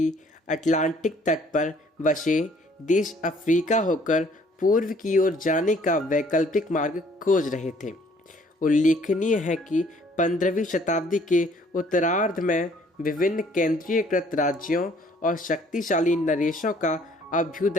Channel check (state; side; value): normal; both; correlation 0.59